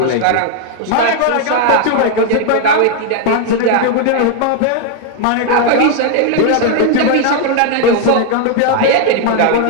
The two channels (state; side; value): different; both; correlation 0.01